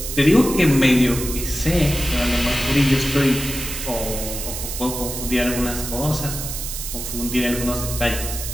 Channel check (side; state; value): right; noise; hiss, 6 dB below the sound